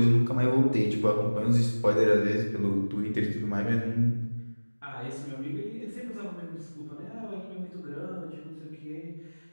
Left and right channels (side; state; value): both; inverted; correlation -1.00